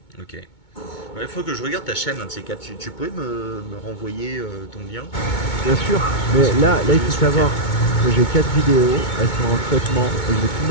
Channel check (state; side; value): late; right; 2.2 ms